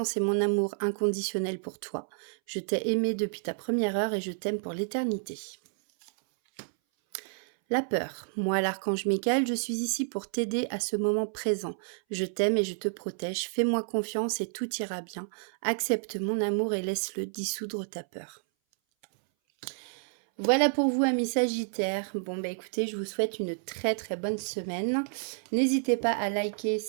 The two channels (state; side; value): silent; left; 58 dB below the other